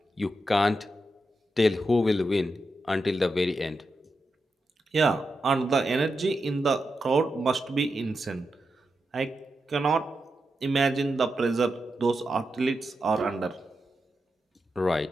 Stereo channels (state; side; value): normal; both; correlation 0.87